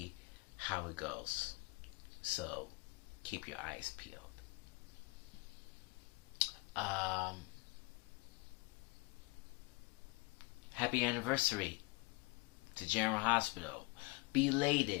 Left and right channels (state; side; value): quieter; right; 26.1 dB